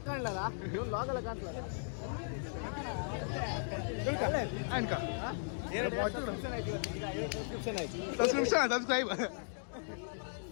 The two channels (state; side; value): silent; right; digital silence